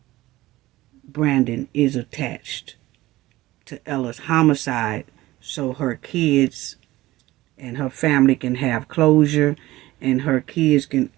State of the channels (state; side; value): quieter; left; 17.6 dB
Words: Brandon is attached to Ella's homicide, so her kids and her family can have closure, and her kids can